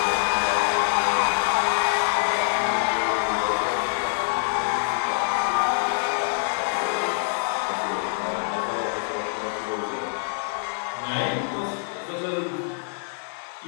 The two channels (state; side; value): silent; right; digital silence